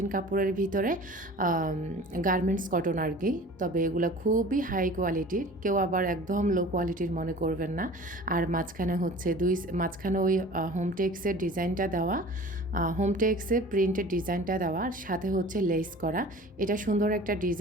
কাপড়ের ভিতরে গার্মেন্টস কটন আর কি। তবে এগুলো খুবই হাই কোয়ালিটির, কেউ আবার একদম লো কোয়ালিটির মনে করবেন না। আর মাঝখানে হচ্ছে মাঝখানে ওই হোমটেক্সের ডিজাইনটা দেওয়া, হোমটেক্সের প্রিন্টের ডিজাইনটা দেওয়া, আর সাথে হচ্ছে লেস করা। এটা সুন্দর একটা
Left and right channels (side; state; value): both; normal; correlation 0.43